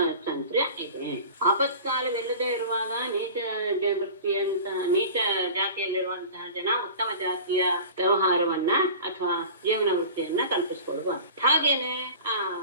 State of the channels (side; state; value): both; inverted; correlation -0.38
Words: ಇದೆ. ಆಪತ್ಕಾಲವಿಲ್ಲದೆ ಇರುವಾಗ ನೀಚ ಜಾತಿಯಲ್ಲಿರುವಂತಹ ಜನ ಉತ್ತಮ ಜಾತಿಯ ವ್ಯವಹಾರವನ್ನ ಅಥವಾ ಜೀವನ ವೃತ್ತಿಯನ್ನ ಕಲ್ಪಿಸಿಕೊಳ್ಳುವ. ಹಾಗೇನೆ